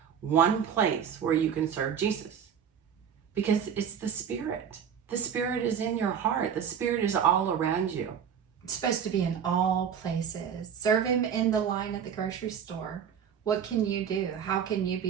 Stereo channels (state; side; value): quieter; left; 8.0 dB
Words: one place where you can serve Jesus, because it's the Spirit. The Spirit is in your heart. The Spirit is all around you. It's supposed to be in all places. Serve him in the line at the grocery store. What can you do? How can you